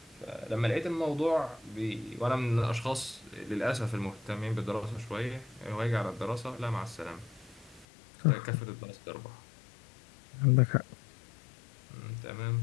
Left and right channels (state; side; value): drops out; right; at 7.9 s